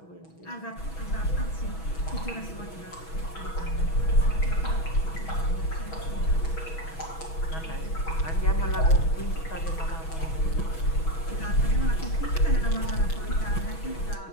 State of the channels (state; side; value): late; right; 6.2 ms